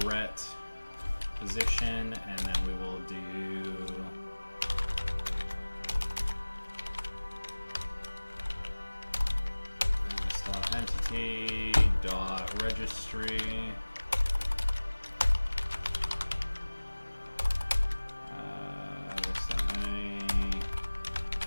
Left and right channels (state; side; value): inverted; both; correlation -1.00